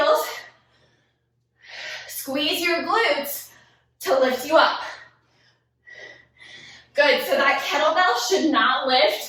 Squeeze your glutes to lift you up. Good, so that kettlebell should not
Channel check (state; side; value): identical; both; correlation 1.00